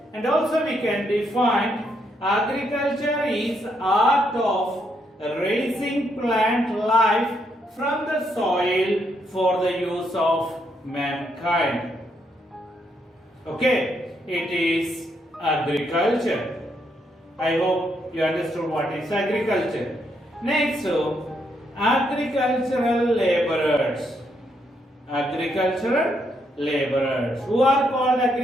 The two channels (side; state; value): both; normal; correlation 0.76